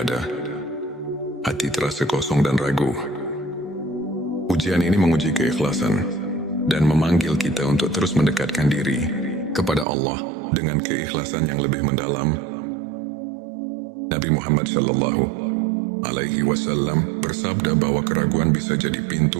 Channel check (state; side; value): drops out; left; at 9.9 s